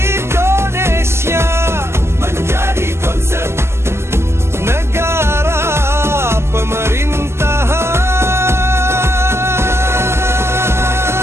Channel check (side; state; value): left; late; 0.12 ms